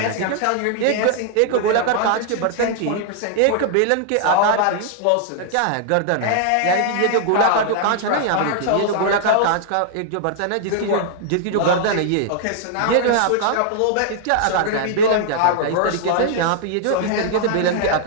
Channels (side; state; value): both; different; correlation -0.01